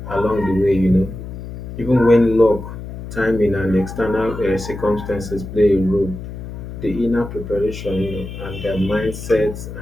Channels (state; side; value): noise; left; hum, 10 dB below the sound